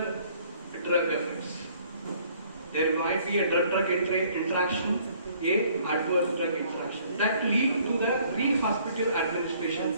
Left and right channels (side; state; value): both; inverted; correlation -0.60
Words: drug effects. There might be a drug interaction, a adverse drug interaction that lead to the